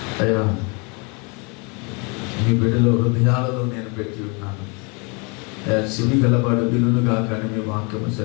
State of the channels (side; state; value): right; quieter; 32.1 dB